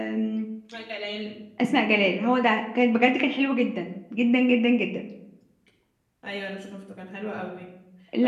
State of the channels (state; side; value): identical; both; correlation 1.00